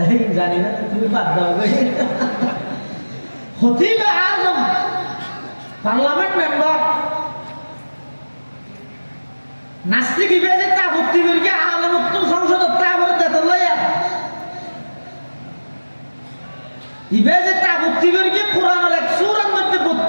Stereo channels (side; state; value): both; inverted; correlation -1.00